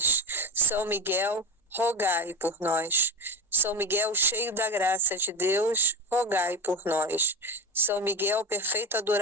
São Miguel, rogai por nós. São Miguel, cheio da graça de Deus, rogai por nós. São Miguel, perfeito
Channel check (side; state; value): both; normal; correlation 0.22